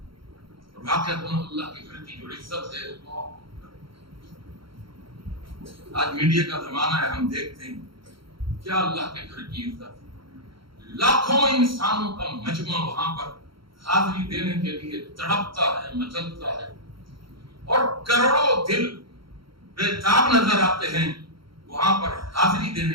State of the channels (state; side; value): late; left; 0.74 ms